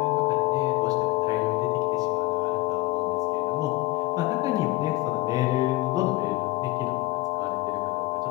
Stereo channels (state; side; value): quieter; right; 20.6 dB